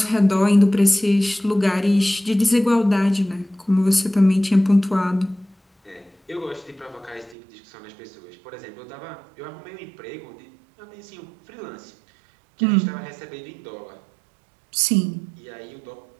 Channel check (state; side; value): drops out; left; at 7.4 s